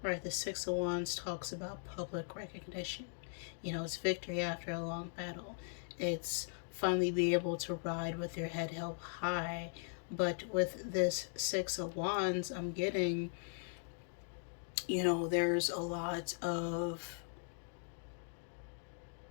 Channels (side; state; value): right; silent; digital silence